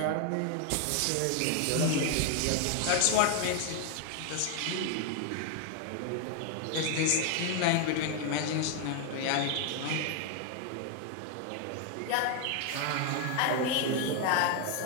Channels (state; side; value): different; both; correlation 0.01